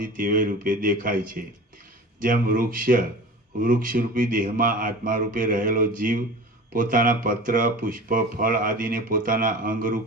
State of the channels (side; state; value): both; normal; correlation 0.36